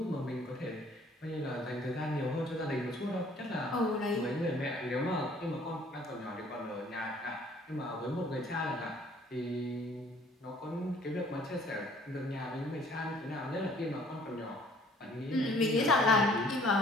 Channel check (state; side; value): normal; both; correlation 0.57